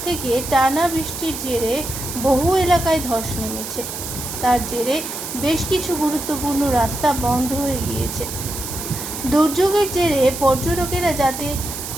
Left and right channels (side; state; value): right; noise; hiss, 7 dB below the sound